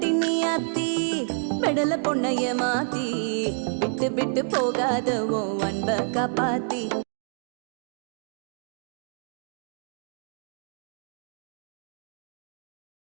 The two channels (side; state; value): left; silent; digital silence